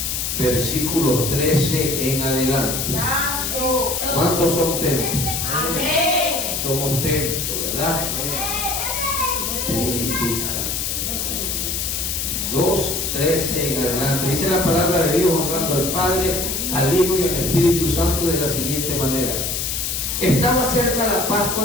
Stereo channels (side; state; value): left; noise; hiss, 1 dB below the sound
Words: versículos 13 en adelante. ¿Cuántos son templos? Amén. Somos templos, ¿verdad? Purifica. 2:13 en adelante. Dice la palabra de Dios, honrando al Padre, al Hijo y al Espíritu Santo de la siguiente manera. Estaba cerca la Pascua